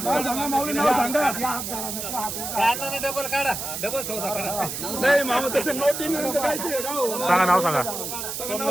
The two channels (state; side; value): noise; right; hiss, 5 dB below the sound